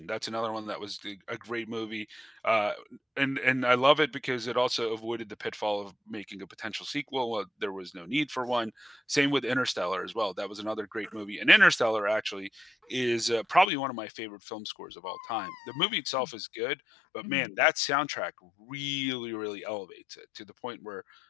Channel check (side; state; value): right; drops out; at 13.7 s